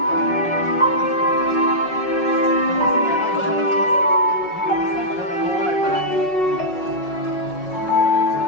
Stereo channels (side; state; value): right; late; 5.4 ms